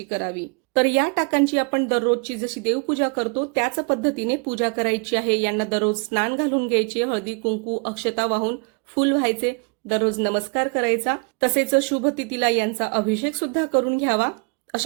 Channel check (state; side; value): quieter; left; 34.3 dB